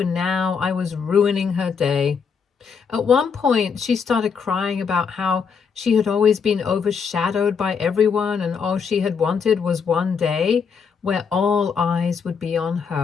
now I was ruining her day. At one point, she started crying about how she had always been overshadowed by everyone and all she had wanted was one day where all eyes would be on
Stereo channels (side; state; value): right; quieter; 6.1 dB